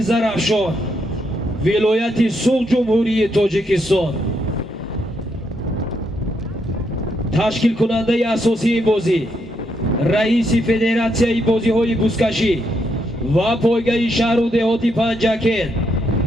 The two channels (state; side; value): normal; both; correlation 0.78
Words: ولایت سوق جمهوری تاجیکستان تشکیل کننده اساسی این بازی رئیس فدراسیون بازی‌های بوزکشی و پایگاه شهر و دهاتی پنجکن